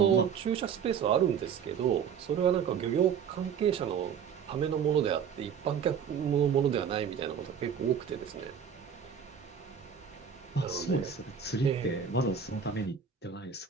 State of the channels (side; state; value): left; quieter; 7.4 dB